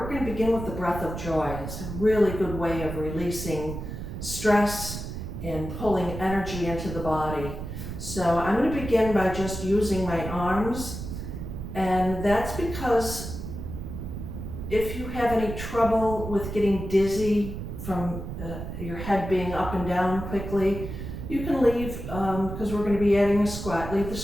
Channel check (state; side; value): noise; right; rumble, 7 dB below the sound